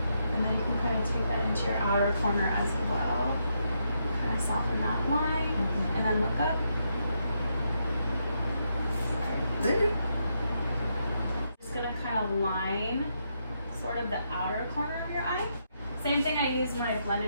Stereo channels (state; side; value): inverted; both; correlation -0.80